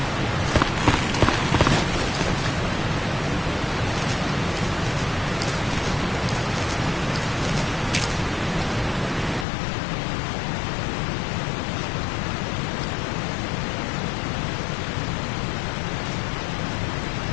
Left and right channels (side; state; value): right; drops out; at 9.5 s